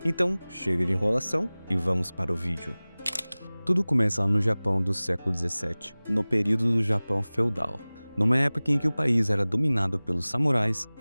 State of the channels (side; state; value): both; inverted; correlation -0.99